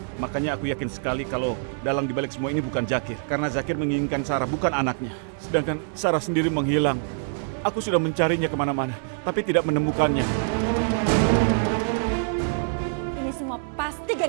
Makanya aku yakin sekali kalau dalang dibalik semua ini bukan Zakir. Karena Zakir menginginkan Sarah, bukan anaknya. Sedangkan Sarah sendiri menghilang. Aku sudah mencarinya kemana-mana, tapi tidak menemukannya. Ini semua pasti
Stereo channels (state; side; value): silent; left; digital silence